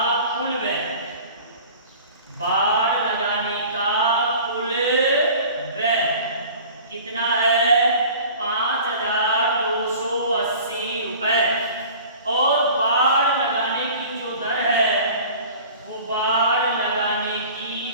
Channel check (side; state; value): both; inverted; correlation -0.43